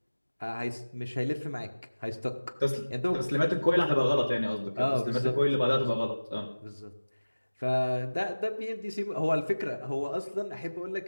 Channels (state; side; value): inverted; both; correlation -1.00